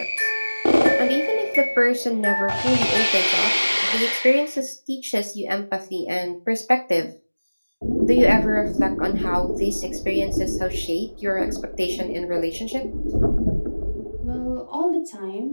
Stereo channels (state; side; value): inverted; both; correlation -1.00